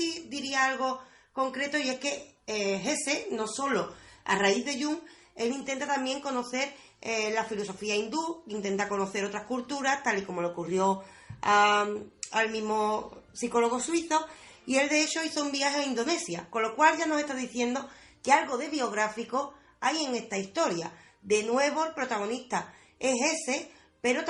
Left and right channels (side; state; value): both; identical; correlation 1.00